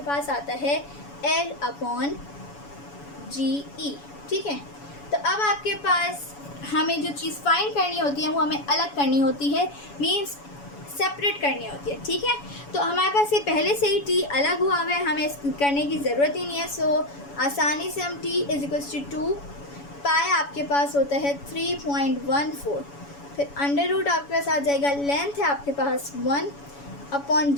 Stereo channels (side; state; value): right; late; 7.1 ms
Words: पास आता है L/GE. ठीक है. तो अब आपके पास हमें जो चीज़ फाइंड करनी होती है वो हमें अलग करनी होती है, मीन्स सेपरेट करनी होती है. ठीक है. तो हमारे पास ये पहले से ही T अलग हुआ हुआ है, हमें करने की ज़रूरत ही नहीं है. सो आसानी से हम T इज़ इक्वल्स टू 2 पाई आपके पास होता है 3.14. फिर अंडर रूट आपके पास आ जाएगा. लेंथ है आपके पास 1 अपॉन